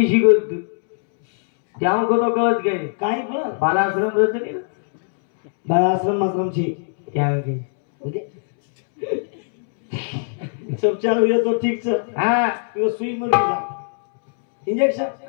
शिकवत तू त्या को तो कळत गए काय पण बालाश्रम रचनी बाळाश्रम आश्रम ची क्या की म्हणजे सब चालू है तो ठीक है हां तो सुई मर जा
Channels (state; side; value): silent; right; 65 dB below the other